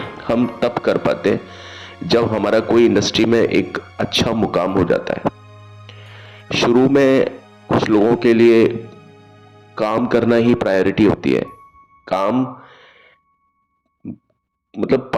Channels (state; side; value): identical; both; correlation 1.00